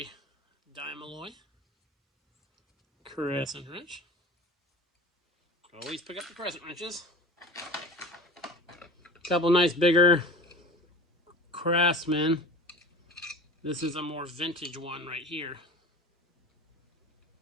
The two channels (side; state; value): both; normal; correlation 0.36